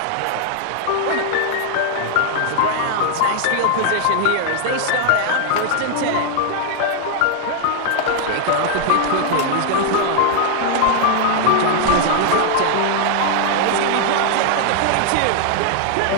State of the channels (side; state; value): both; different; correlation 0.00